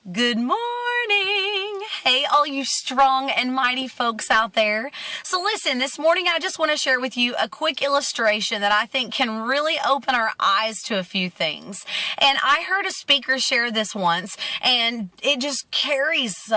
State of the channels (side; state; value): both; identical; correlation 1.00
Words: Good morning. Hey, all you strong and mighty folks out there. So listen, this morning I just want to share with you a quick illustration that I think can really open our eyes to a few things. And I heard a speaker share this once, and it just carries